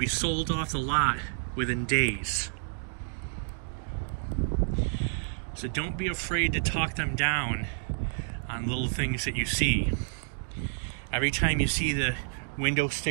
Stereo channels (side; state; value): left; silent; digital silence